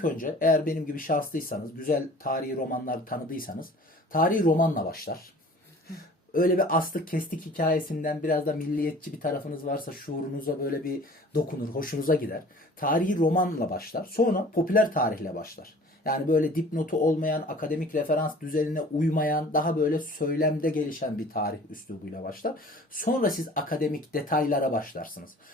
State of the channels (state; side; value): normal; both; correlation 0.47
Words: önce eğer benim gibi şanslıysanız, güzel tarihi romanlar tanıdıysanız tarihi romanla başlar. Öyle bir astık kestik hikayesinden biraz da milliyetçi bir tarafınız varsa şuurunuza böyle bir dokunur, hoşunuza gider. Tarihi romanla başlar. Sonra popüler tarihle başlar. Yani böyle dipnotu olmayan, akademik referans düzenine uymayan, daha böyle söylemde gelişen bir tarih üslubuyla başlar. Sonra siz akademik detaylara başlarsınız.